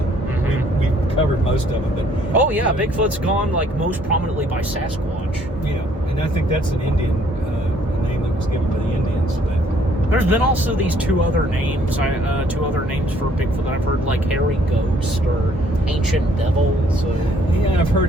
We've covered most of them, but... Oh, yeah, Bigfoot's gone, like, most prominently by Sasquatch. Yeah, and I think that's an Indian name that was given by the Indians, but... There's been also these two other names for Bigfoot that I've heard, like Hairy Ghost or Ancient Devil. So. Yeah, I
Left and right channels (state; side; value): normal; both; correlation 0.63